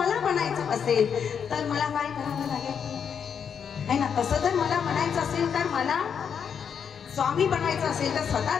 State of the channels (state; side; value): quieter; right; 7.3 dB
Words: बनायचं असेल तर मला काय करावं लागेल आहे ना. तसं जर मला बनायचं असेल तर मला स्वामी बनायचं असेल तर